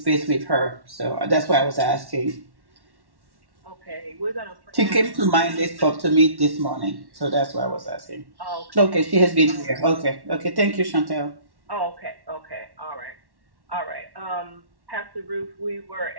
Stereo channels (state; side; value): late; left; 1.1 ms